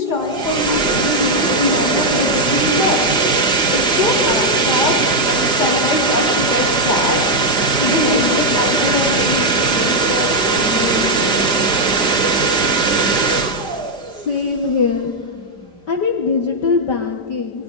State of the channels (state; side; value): late; right; 5.0 ms